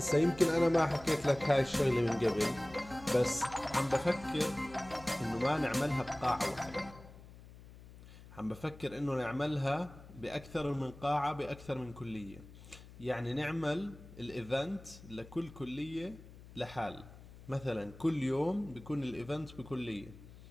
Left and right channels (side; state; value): left; noise; hum, 18 dB below the sound